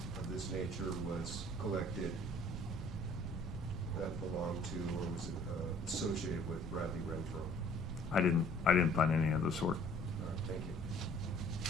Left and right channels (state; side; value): normal; both; correlation 0.55